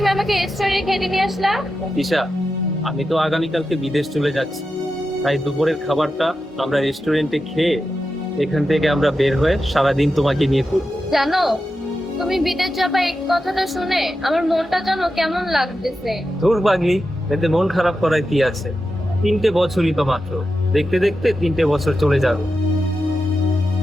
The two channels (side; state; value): both; normal; correlation 0.90